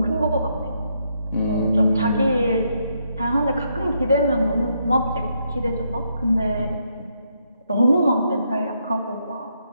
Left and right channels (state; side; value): inverted; both; correlation -0.77